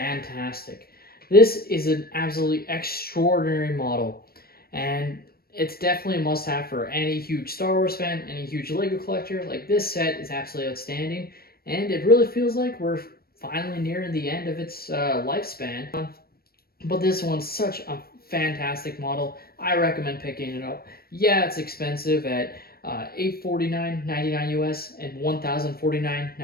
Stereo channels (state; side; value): late; right; 0.44 ms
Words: This is an absolutely extraordinary model, and it's definitely a must-have for any huge Star Wars fan, any huge LEGO collector. Like, this set is absolutely outstanding, and it really feels like we're finally nearing the end of its lifespan. But this one's such a fantastic model. I recommend picking it up. Yeah, it's expensive at $849.99 US and